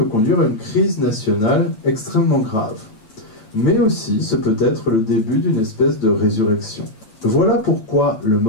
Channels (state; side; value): late; right; 9.0 ms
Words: conduire à une crise nationale extrêmement grave. Mais aussi, ce peut être le début d'une espèce de résurrection. Voilà pourquoi le